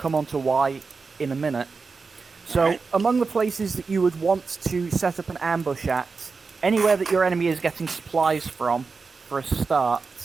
on to why in a minute. So, Alright. among the places that you would want to set up an ambush at, anywhere that your enemy is getting supplies from, for a start,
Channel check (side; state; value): left; quieter; 4.6 dB